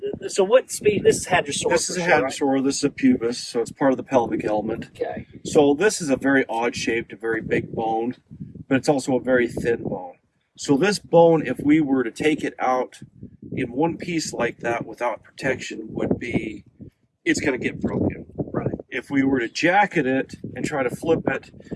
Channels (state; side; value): identical; both; correlation 1.00